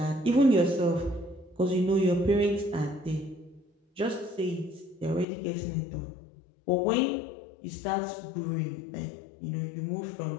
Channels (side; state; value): right; drops out; at 5.2 s